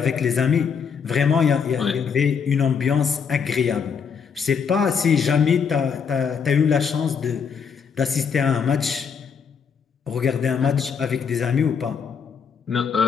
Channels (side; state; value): right; quieter; 6.5 dB